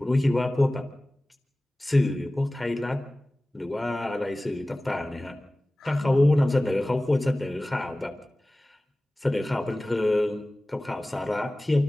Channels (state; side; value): normal; both; correlation 0.98